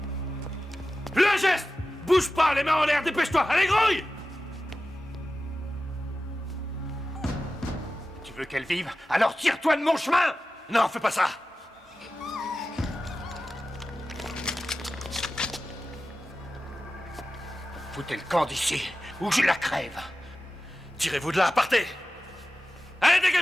Le geste! Bouge pas, les mains en l'air, dépêche-toi! Allez, grouille! Tu veux qu'elle vive? Alors tire-toi de mon chemin! Non, fais pas ça! Foutez le camp d'ici, ou je la crève! Tirez-vous de là, partez! Allez,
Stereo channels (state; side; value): normal; both; correlation 0.94